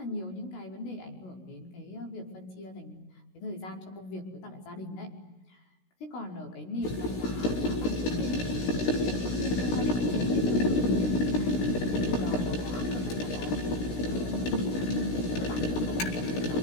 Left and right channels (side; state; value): right; late; 16 ms